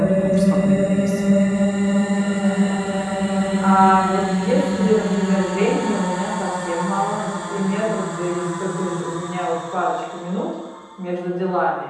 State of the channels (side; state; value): both; identical; correlation 1.00